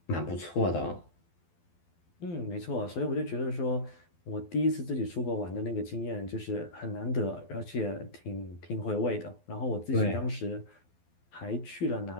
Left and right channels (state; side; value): late; right; 12 ms